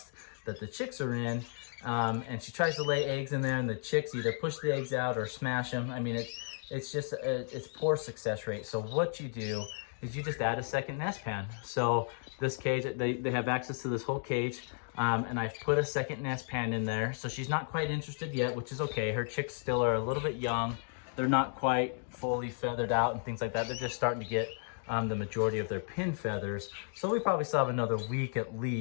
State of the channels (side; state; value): right; silent; 55 dB below the other